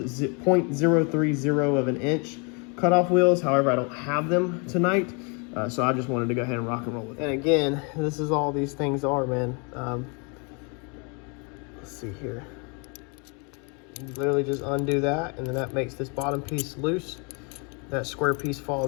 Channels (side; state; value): right; quieter; 34.1 dB